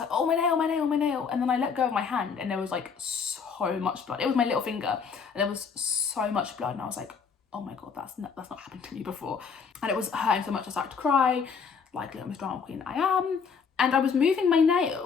oh, my nail, my nail, my nail. And then I let go of my hand and there was like so much blood. It was my little finger and there was so much blood. And I was like, oh my God, that's not happened to me before. And it was hurting so much I started to cry, like little Miss Drama Queen I am. And I was moving my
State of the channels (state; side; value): quieter; right; 5.9 dB